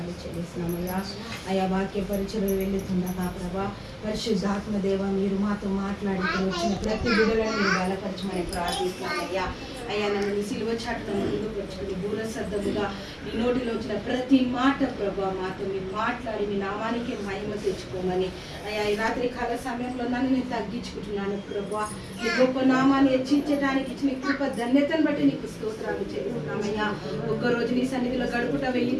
చెల్లిస్తున్నామయ్యా. అయ్యా, వాక్య పరిచయం వెళ్ళుతుండగా ప్రభా, పరిశుద్ధాత్మ దేవ మీరు మాతో మాట్లాడి వచ్చిన ప్రతి బిడ్డలను మీరు బలపరచమని ప్రార్థిస్తున్నామయ్యా. అయ్యా, నన్ను నీ సిలువ చాటును ముందుకు వచ్చుకుని దూరశబ్దముగా నీ నోటిలో వచ్చిన ప్రతి మాట ప్రభా మాతో మీరు మాట్లాడి మీ నామానికి మహిమ తెచ్చుకోమని అయ్యా, ఈ రాత్రి కాల సమయంలో నన్ను నేను తగ్గించుకుంటున్నాను ప్రభా. నీ గొప్ప నామాన్ని హెచ్చించడానికి ఇచ్చిన కృప ధన్యతను బట్టి నీకు స్తోత్రాలు చెల్లిస్తున్నామయ్యా. ఒక్కరోజు నీ సన్నిధిలో గడుపుట 1000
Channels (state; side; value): identical; both; correlation 1.00